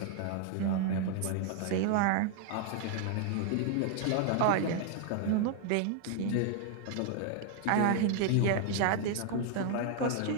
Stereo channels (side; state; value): both; different; correlation 0.00